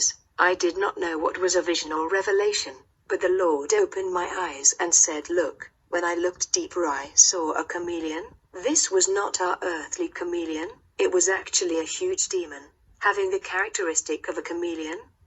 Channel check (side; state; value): both; identical; correlation 1.00